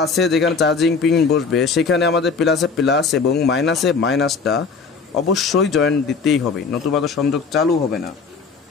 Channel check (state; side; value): quieter; right; 5.0 dB